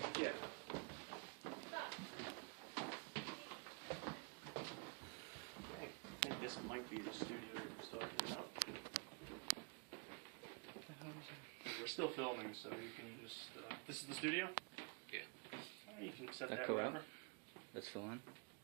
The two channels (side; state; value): left; quieter; 34.5 dB